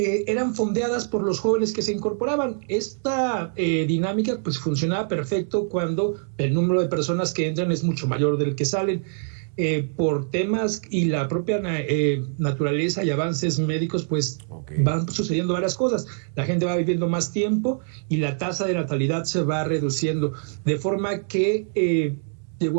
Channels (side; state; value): left; silent; 62 dB below the other